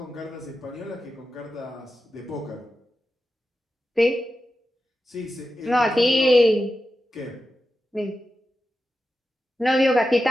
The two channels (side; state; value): both; normal; correlation 0.91